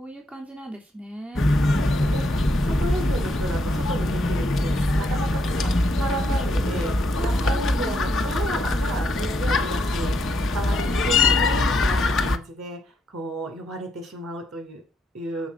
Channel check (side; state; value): both; normal; correlation 0.76